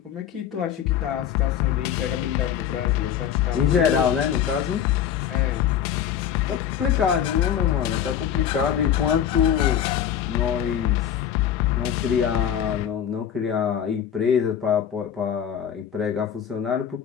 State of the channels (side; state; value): right; quieter; 9.4 dB